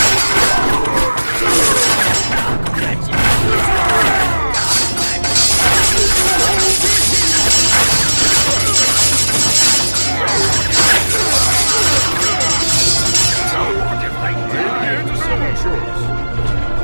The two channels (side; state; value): both; inverted; correlation -1.00